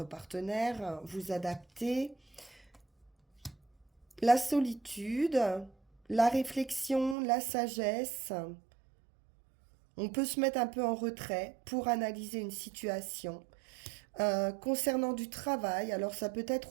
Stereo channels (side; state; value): left; drops out; at 7.2 s